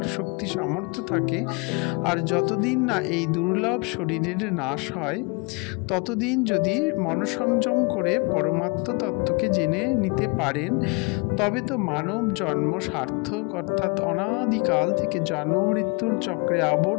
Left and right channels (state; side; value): quieter; right; 31.1 dB